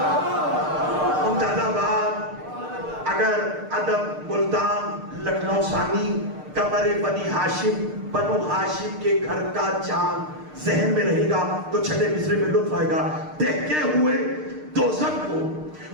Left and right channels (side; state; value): left; late; 6.6 ms